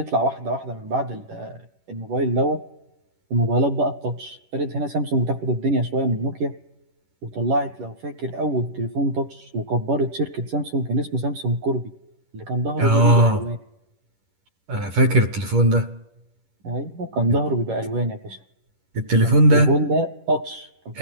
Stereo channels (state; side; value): late; left; 11 ms